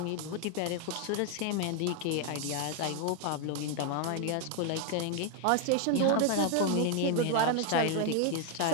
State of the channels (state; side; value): different; both; correlation 0.00